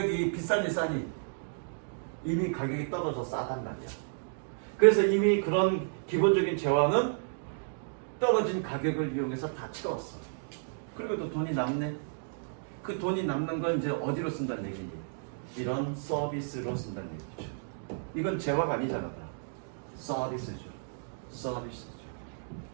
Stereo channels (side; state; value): left; silent; digital silence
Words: 비싼지 싸니 이미 가격이 떨어져 싸단 말이야. 그래서 이미 그런 기본적인 재화는 떨어진 가격을 이용해서 다 채웠어. 그리고 또 돈이 남네. 그 돈이 남는 건 이제 어디로 쓴다는 얘기니? 이런 서비스로 쓴다는 얘기죠. 이건 재화가 아니잖아. 다. 서비스죠.